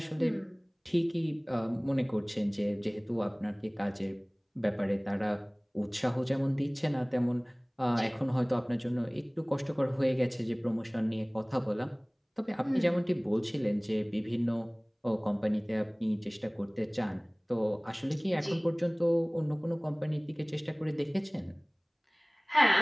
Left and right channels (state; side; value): identical; both; correlation 1.00